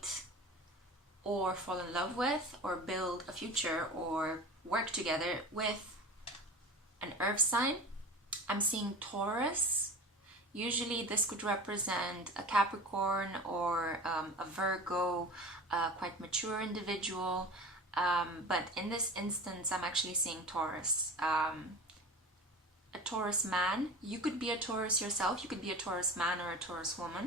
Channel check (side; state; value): both; normal; correlation 0.33